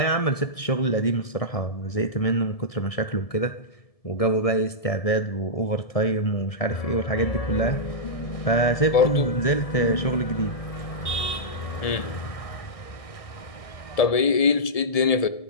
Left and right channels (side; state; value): right; late; 1.7 ms